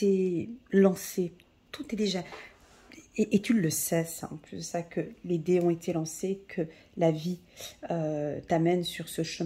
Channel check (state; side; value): identical; both; correlation 1.00